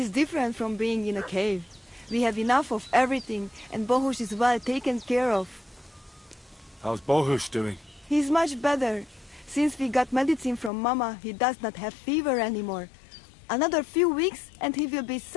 different from being in a cave. We have enough of everything, and Bohush is well taken care of. How's Bohush doing? He's much better. Since we got medicine from Mama, he does not have fever anymore. Another few weeks, and he will be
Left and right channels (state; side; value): drops out; right; at 10.7 s